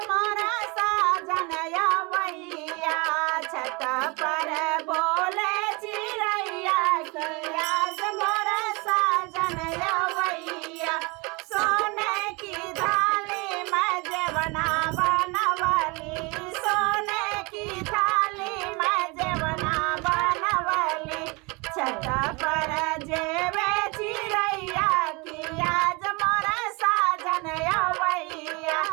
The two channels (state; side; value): quieter; left; 27.9 dB